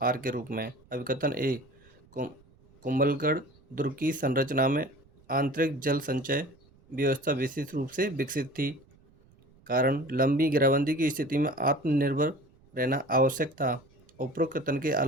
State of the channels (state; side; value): noise; right; rumble, 29 dB below the sound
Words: के रूप में। अभिकथन ए, कुंभलगढ़ दुर्ग की संरचना में आंतरिक जल संचय व्यवस्था विशेष रूप से विकसित थी। कारण लंबी घेराबंदी की स्थिति में आत्मनिर्भर रहना आवश्यक था। उपरोक्त कथन के